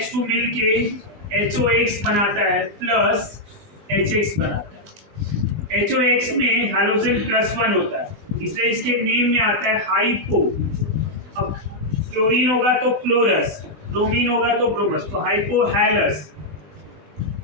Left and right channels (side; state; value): left; late; 20 ms